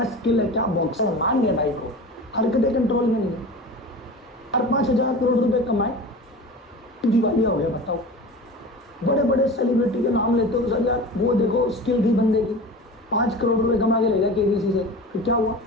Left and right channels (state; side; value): normal; both; correlation 0.34